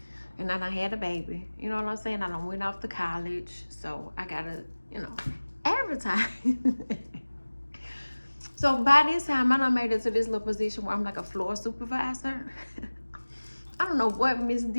and I done had a baby. You know what I'm saying? I done went off to college, so I gotta, advertise. So by this time, I done made it to this little position where I'm like a floor supervisor. I don't know what Miss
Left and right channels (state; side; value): inverted; both; correlation -1.00